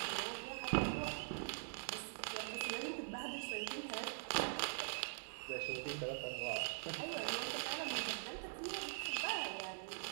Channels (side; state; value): left; silent; digital silence